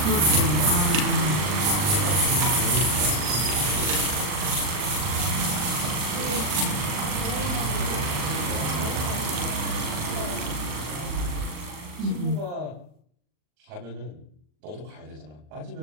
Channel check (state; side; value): late; left; 40 ms